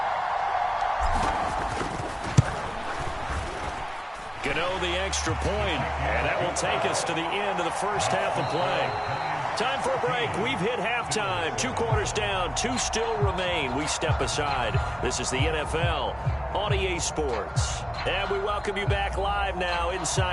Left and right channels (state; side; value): identical; both; correlation 1.00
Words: Gano the extra point, and that will take us to the end of the first half of play. Time for a break. We've hit halftime. 2 quarters down. 2 still remain. We step aside. This is the NFL on EA Sports. And we welcome you back live now